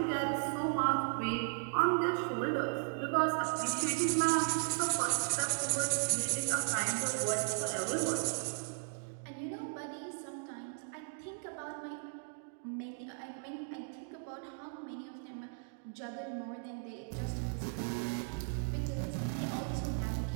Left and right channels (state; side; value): silent; left; digital silence